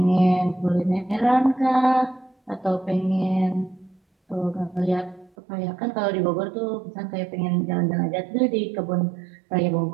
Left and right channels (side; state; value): left; drops out; at 5.3 s